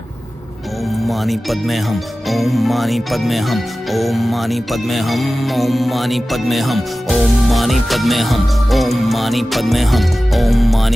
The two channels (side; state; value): both; normal; correlation 0.96